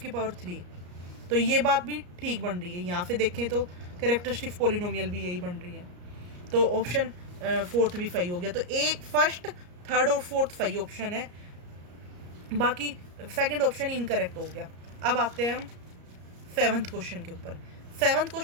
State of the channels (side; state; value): left; late; 34 ms